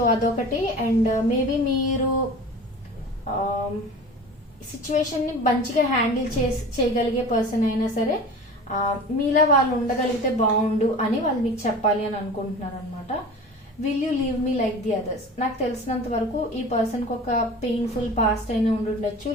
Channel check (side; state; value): both; normal; correlation 0.37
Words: అదొకటి. అండ్ మేబీ మీరు సిచ్యువేషన్ ని మంచిగా హ్యాండిల్ చేయగలిగే పర్సన్ అయినా సరే మీలా వాళ్ళు ఉండగలిగితే బాగుండు అని వాళ్ళు మీకు చెప్పాలి అని అనుకుంటున్నారు అనమాట. Will you leave me like the others? నాకు తెలిసినంత వరకు ఈ పర్సన్ కి ఒక పెయిన్ఫుల్ పాస్ట్ అయినా ఉండుండొచ్చు,